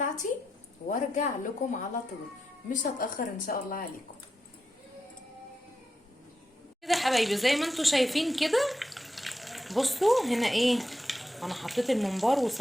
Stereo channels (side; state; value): both; normal; correlation 0.86